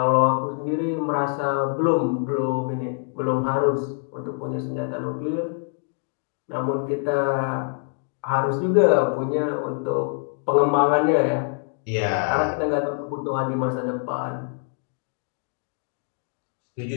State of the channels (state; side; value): silent; right; 56 dB below the other